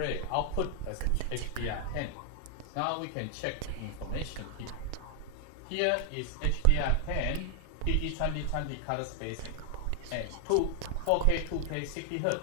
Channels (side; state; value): both; different; correlation 0.00